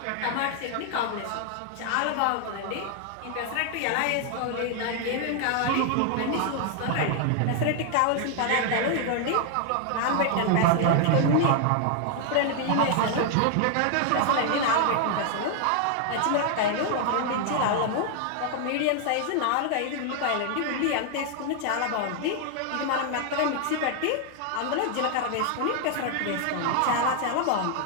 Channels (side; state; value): both; different; correlation 0.00